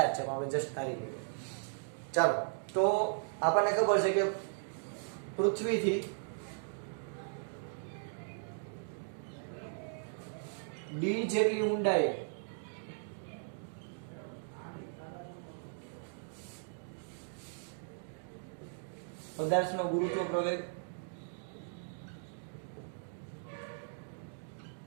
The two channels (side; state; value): left; silent; digital silence